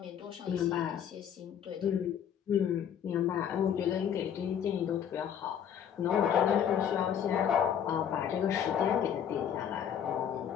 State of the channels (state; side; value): quieter; right; 8.8 dB